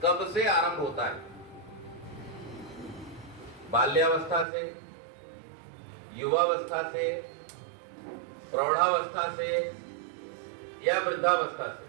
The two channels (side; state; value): left; drops out; at 4.5 s